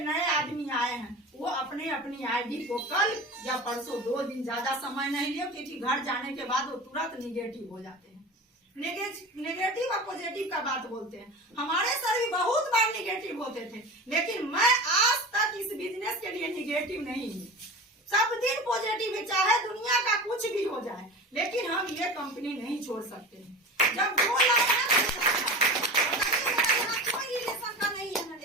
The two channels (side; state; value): both; normal; correlation 0.31